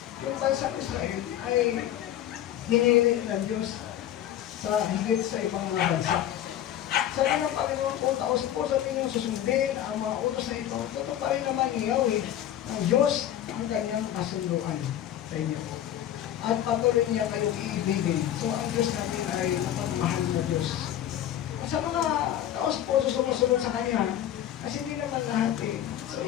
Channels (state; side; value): quieter; right; 11.5 dB